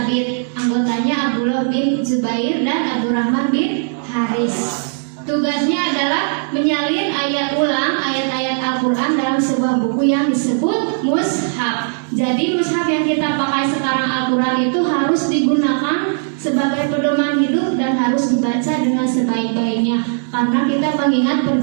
anggotanya Abdullah bin Zubair dan Abdurrahman bin Haris. Tugasnya adalah menyalin ayat ulang ayat-ayat Al-Quran dalam sebuah buku yang disebut mushaf. Jadi mushaf yang kita pakai sekarang Al-Quran itu harus digunakan sebagai pedoman hidup dan harus dibaca dengan sebaik-baiknya, karena kita mengingat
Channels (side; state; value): left; silent; digital silence